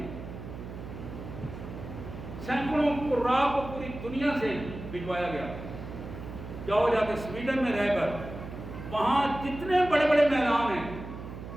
سینکڑوں قراء کو پوری دنیا سے بھجوایا گیا۔ جاؤ جا کے سویڈن میں رہ کر وہاں جتنے بڑے بڑے میدان ہیں،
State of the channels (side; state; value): right; noise; hum, 10 dB below the sound